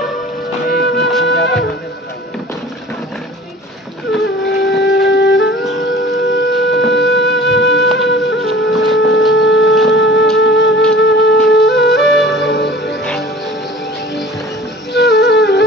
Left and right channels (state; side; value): normal; both; correlation 0.43